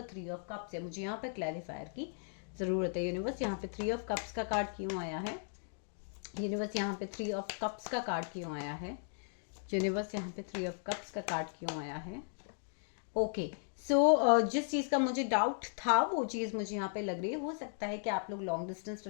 3 ऑफ कप्स है। मुझे यहाँ पर क्लैरिफायर की ज़रूरत है। यूनिवर्स, यहाँ पे 3 ऑफ कप्स का कार्ड क्यों आया है? यूनिवर्स, यहाँ पे 3 ऑफ कप्स का कार्ड क्यों आया है? यूनिवर्स, यहाँ पे 3 ऑफ कप्स का कार्ड क्यों आया है? ओके, जिस चीज़ का मुझे डाउट था वो चीज़ मुझे यहाँ पे लग रही है। हो सकता है कि आप लोग लॉन्ग डिस्टेंस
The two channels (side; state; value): right; silent; digital silence